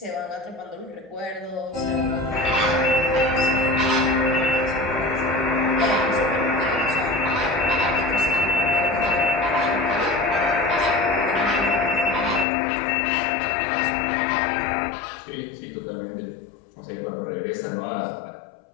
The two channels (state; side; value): drops out; right; at 12.5 s